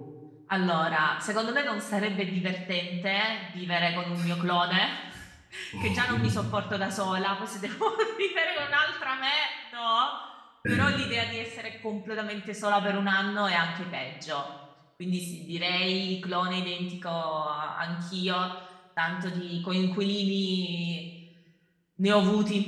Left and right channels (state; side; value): identical; both; correlation 1.00